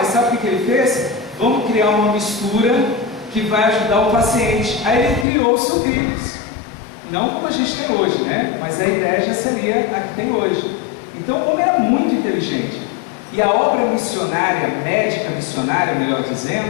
sabe o que ele fez? Vamos criar uma mistura que vai ajudar o paciente. Aí ele criou os sucrilhos. Não como a gente tem hoje, né? Mas a ideia já seria a que tem hoje. Então o homem era muito inteligente. E a obra missionária, médica missionária, melhor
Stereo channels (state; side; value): drops out; right; at 5.2 s